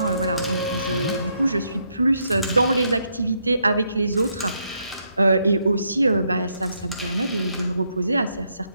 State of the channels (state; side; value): inverted; both; correlation -0.76